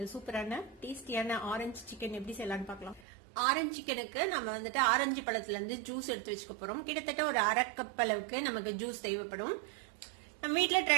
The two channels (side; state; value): left; drops out; at 3.0 s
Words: சூப்பரான டேஸ்டியான ஆரஞ்சு சிக்கன் எப்படி செய்யலாம்னு பார்க்கலாம். ஆரஞ்சு சிக்கனுக்கு நம்ம வந்துட்டு ஆரஞ்சு பழத்துல இருந்து ஜூஸ் எடுத்து வச்சுக்க போறோம். கிட்டத்தட்ட ஒரு 1/2 கப் அளவுக்கு நமக்கு ஜூஸ் தேவைப்படும். நம்ம வீட்டுல